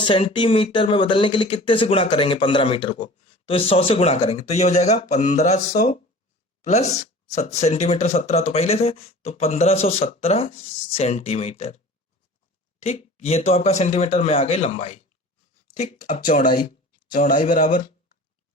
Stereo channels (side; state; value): both; normal; correlation 0.41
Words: में बदलने के लिए कितने से गुणा करेंगे 15 मीटर को, तो 100 से गुणा करेंगे, तो ये हो जाएगा 1500 प्लस सेंटीमीटर 17 तो पहले थे, तो 1517 सेंटीमीटर। ठीक, ये तो आपका सेंटीमीटर में आ गई लंबाई। ठीक, अब चौड़ाई बराबर